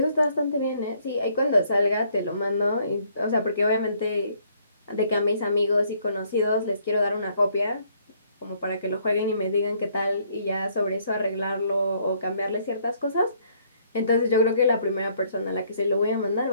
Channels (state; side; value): inverted; both; correlation -0.66